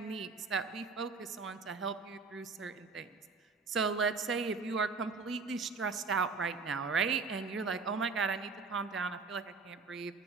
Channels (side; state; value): left; quieter; 4.5 dB